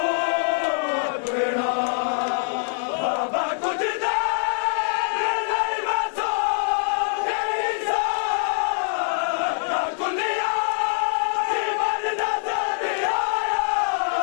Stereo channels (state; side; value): silent; right; 63 dB below the other